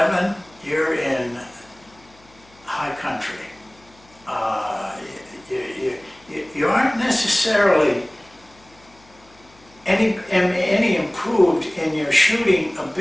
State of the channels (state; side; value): noise; left; hum, 28 dB below the sound